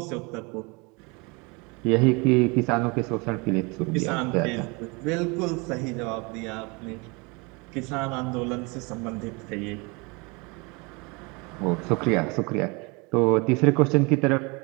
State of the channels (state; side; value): quieter; left; 28.7 dB